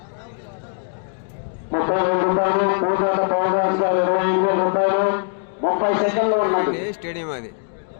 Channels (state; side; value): silent; right; digital silence